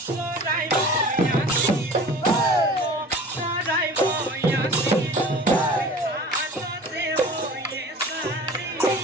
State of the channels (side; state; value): both; normal; correlation 0.42